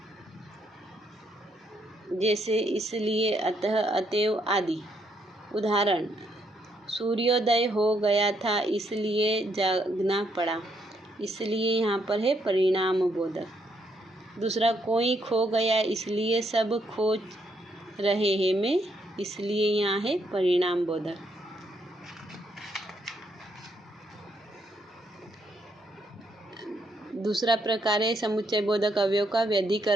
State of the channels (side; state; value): both; normal; correlation 0.74